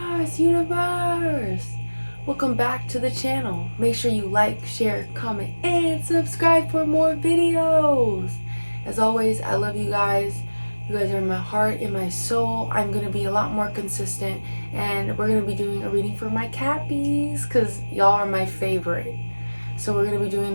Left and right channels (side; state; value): both; inverted; correlation -1.00